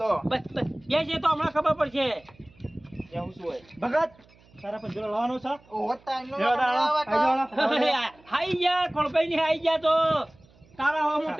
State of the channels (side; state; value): right; noise; hum, 29 dB below the sound